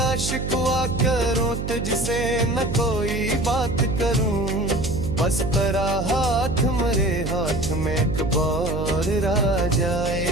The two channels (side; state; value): right; noise; hum, 4 dB below the sound